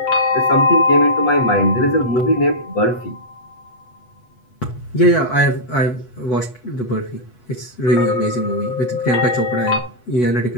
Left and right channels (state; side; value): late; right; 8.2 ms